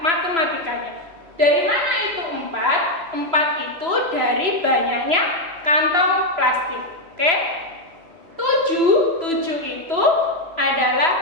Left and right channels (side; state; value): left; late; 3.0 ms